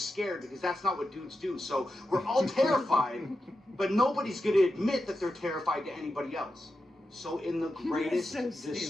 because that's not what dudes do. So we're all terrified, but nobody's going to admit that they're terrified to anybody else. So in the greatest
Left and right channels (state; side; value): normal; both; correlation 0.89